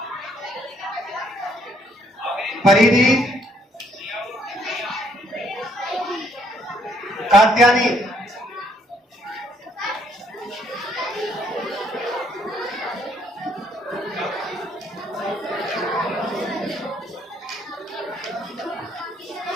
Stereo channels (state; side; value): normal; both; correlation 0.68